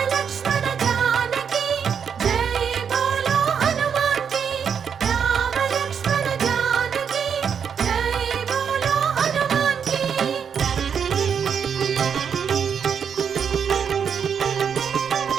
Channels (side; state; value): left; quieter; 7.2 dB